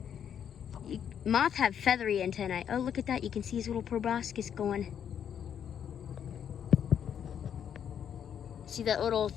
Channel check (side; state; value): right; quieter; 8.6 dB